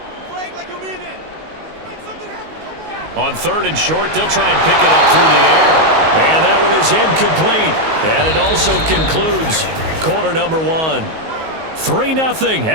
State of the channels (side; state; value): left; late; 19 ms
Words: On 3rd and short, they'll try and pick it up through the air. And that one is incomplete. And it also concludes quarter number 1. 3-0